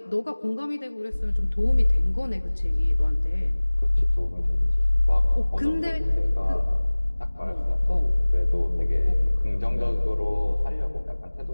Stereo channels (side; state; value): both; inverted; correlation -1.00